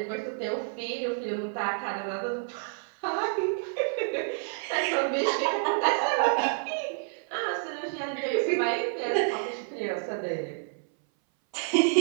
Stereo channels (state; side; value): silent; left; 59 dB below the other